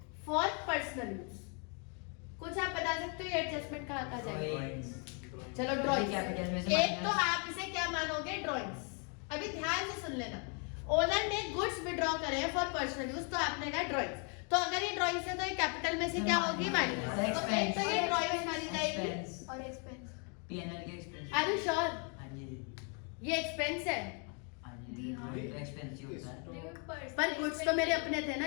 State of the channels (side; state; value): right; quieter; 37.2 dB